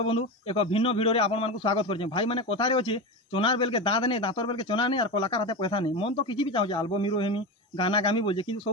बंधु एक भिन्न भिडियो रे आपण मानकु स्वागत करछे। भाई माने कथारे अछि चोनार बेल के दांत नहीं दांतर बेल के चोना नहीं और कलाकार हाथे पैसा नहीं। मन तो किछि भी चाहूजे एल्बम हिरो हेमी गाना गामी बोलजे किंतु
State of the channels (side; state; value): both; normal; correlation 0.21